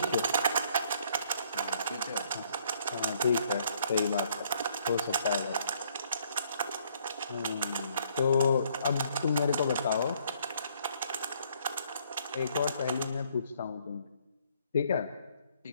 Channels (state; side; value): inverted; both; correlation -0.65